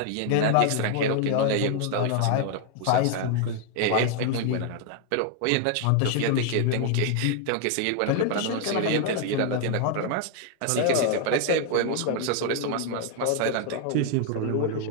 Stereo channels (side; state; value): both; different; correlation 0.00